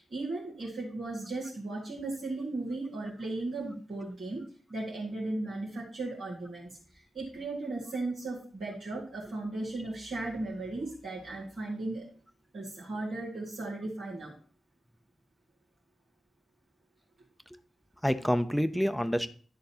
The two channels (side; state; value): both; normal; correlation 0.92